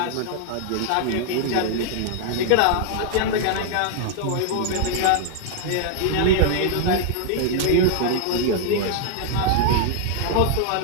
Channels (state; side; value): different; both; correlation 0.00